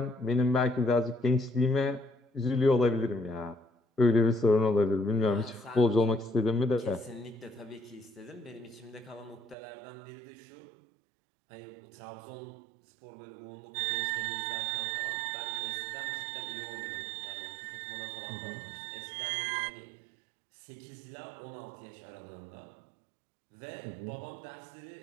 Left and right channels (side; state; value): left; drops out; at 9.6 s